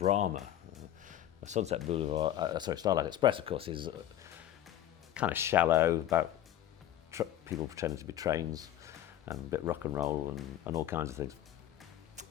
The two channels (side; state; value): right; quieter; 12.1 dB